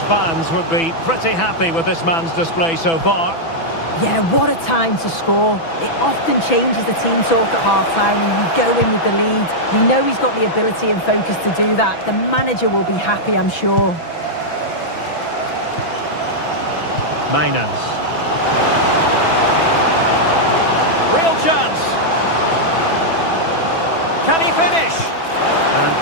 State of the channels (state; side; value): late; right; 6.0 ms